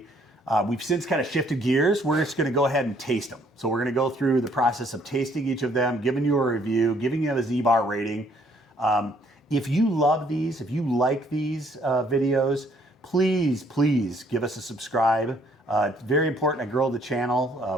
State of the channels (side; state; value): both; normal; correlation 0.64